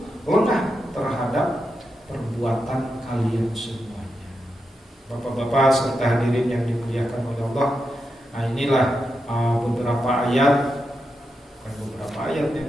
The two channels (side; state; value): both; normal; correlation 0.87